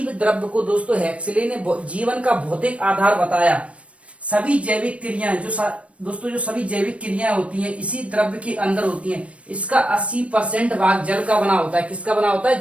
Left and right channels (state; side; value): late; left; 0.063 ms